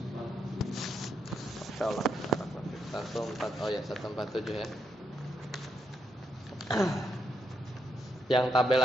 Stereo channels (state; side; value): normal; both; correlation 0.80